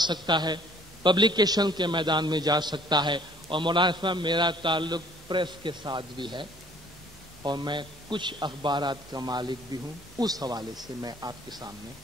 ہے، پبلیکیشن کے میدان میں جا سکتا ہے. اور مولانا صاحب میرا تعلق پریس کے ساتھ بھی ہے اور میں کچھ اخبارات کا مالک بھی ہوں. اس حوالے سے میں آپ کے سامنے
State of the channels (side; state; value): both; normal; correlation 0.56